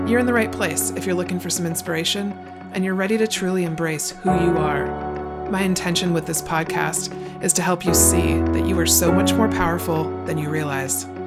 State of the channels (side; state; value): both; identical; correlation 1.00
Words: You're in the right place if you're looking for some inspiration and you're ready to truly embrace who you are. My intention with this podcast is to help you see that you are so much more powerful than you realize.